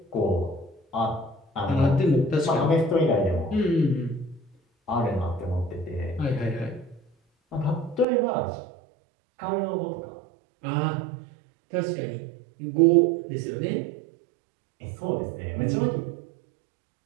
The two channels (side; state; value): left; drops out; at 8.1 s